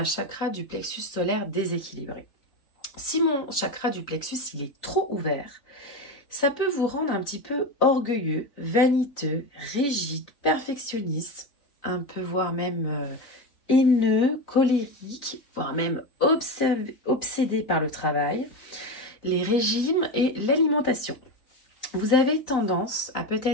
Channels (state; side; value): late; right; 3.9 ms